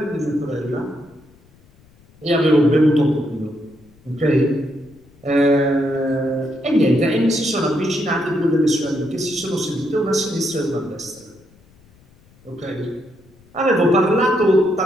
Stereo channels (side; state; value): left; noise; rumble, 29 dB below the sound